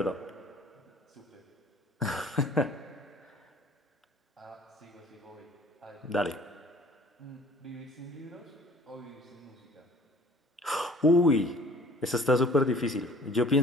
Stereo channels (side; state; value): both; normal; correlation 0.51